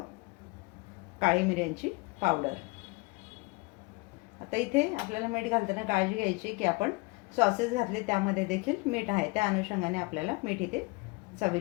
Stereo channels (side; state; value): right; quieter; 25.9 dB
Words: काळी मिऱ्यांची पावडर. आता इथे आपल्याला मीठ घालताना काळजी घ्यायची की आपण सॉसेस घातले त्यामध्ये देखील मीठ आहे. त्या अनुषंगाने आपल्याला मीठ इथे